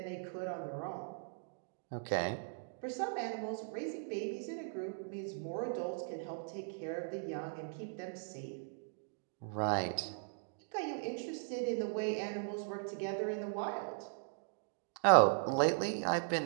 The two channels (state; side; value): silent; left; digital silence